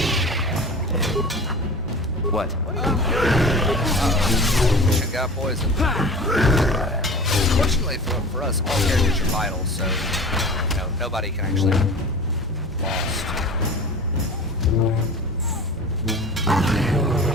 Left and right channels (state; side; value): normal; both; correlation 0.38